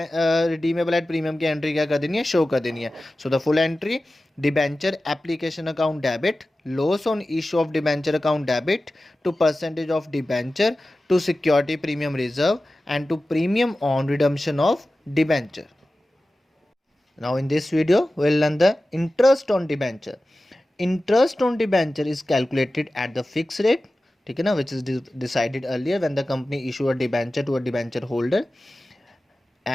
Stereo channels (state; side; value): normal; both; correlation 0.95